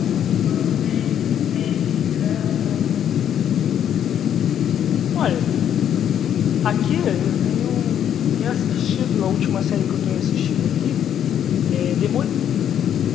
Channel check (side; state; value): right; quieter; 9.6 dB